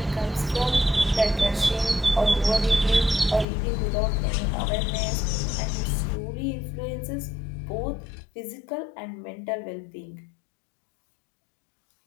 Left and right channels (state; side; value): drops out; right; at 3.5 s